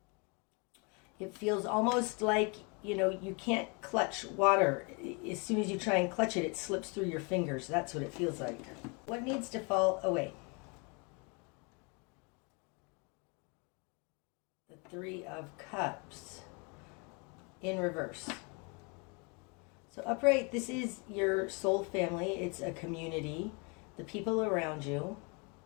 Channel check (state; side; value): quieter; right; 32.7 dB